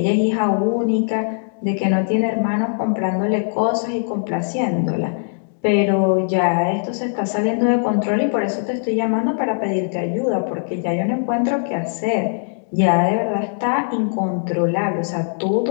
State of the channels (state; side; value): silent; right; digital silence